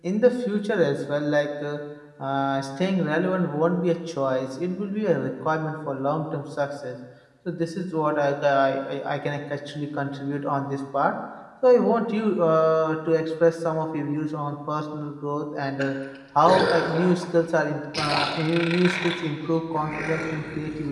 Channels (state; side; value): identical; both; correlation 1.00